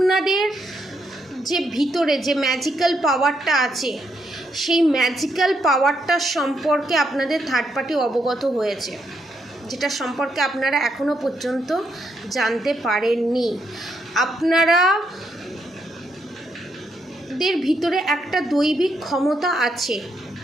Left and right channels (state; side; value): normal; both; correlation 0.78